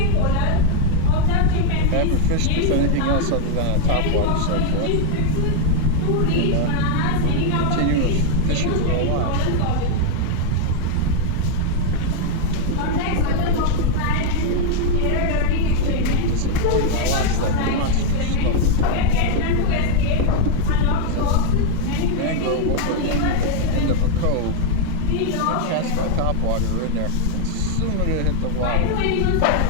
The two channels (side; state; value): both; different; correlation 0.00